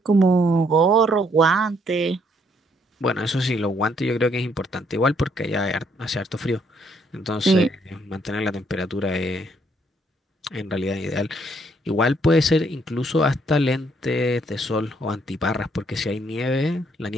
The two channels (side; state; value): both; normal; correlation 0.69